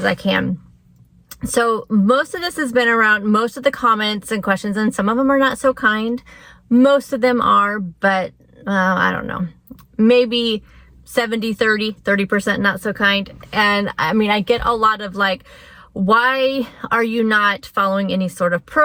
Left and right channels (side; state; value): both; identical; correlation 1.00